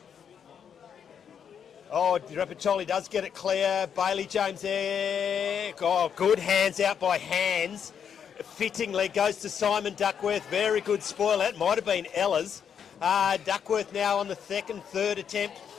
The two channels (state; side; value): quieter; right; 7.8 dB